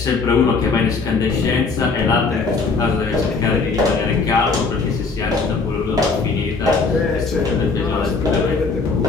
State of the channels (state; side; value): quieter; right; 4.3 dB